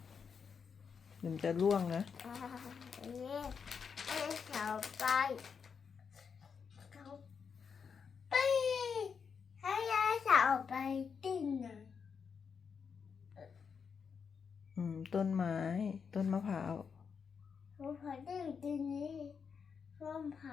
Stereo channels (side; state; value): right; quieter; 6.2 dB